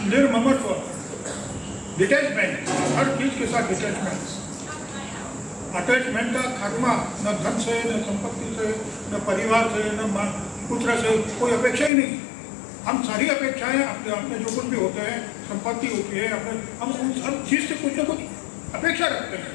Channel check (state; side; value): drops out; right; at 11.9 s